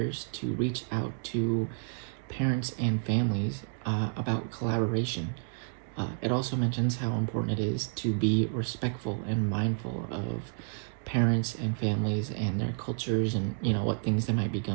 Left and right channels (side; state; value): left; silent; 58 dB below the other